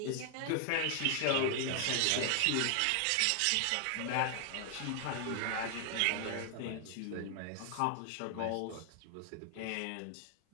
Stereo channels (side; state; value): both; different; correlation 0.00